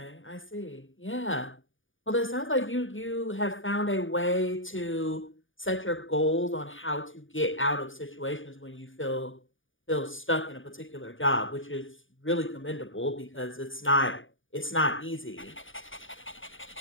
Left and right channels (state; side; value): late; right; 0.57 ms